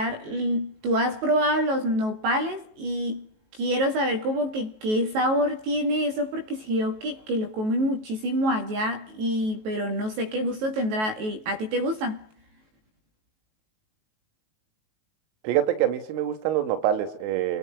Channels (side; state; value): left; late; 19 ms